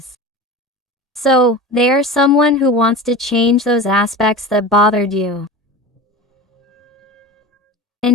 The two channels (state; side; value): normal; both; correlation 0.31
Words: So, they are someone who wants to change those aspects that bothered you.